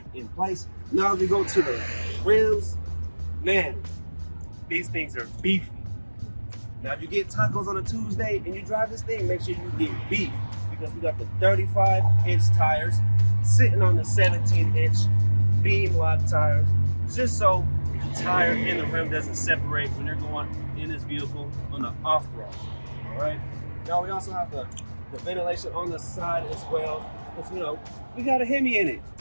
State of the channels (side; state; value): both; inverted; correlation -1.00